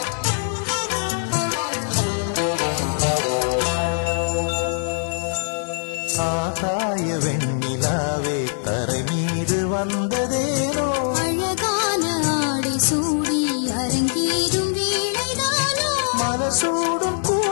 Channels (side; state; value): right; silent; digital silence